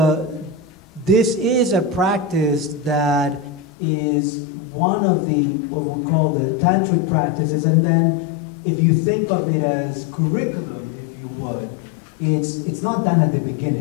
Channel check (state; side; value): drops out; right; at 3.7 s